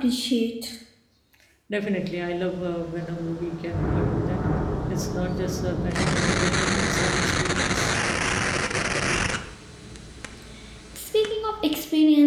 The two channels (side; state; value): both; identical; correlation 1.00